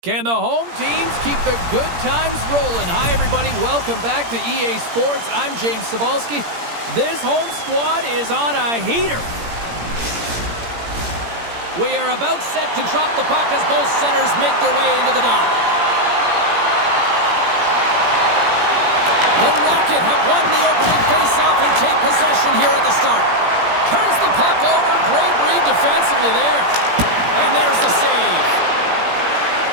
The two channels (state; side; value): late; left; 17 ms